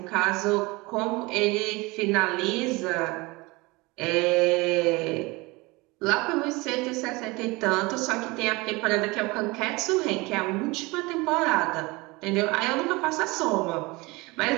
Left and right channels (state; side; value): quieter; left; 23.9 dB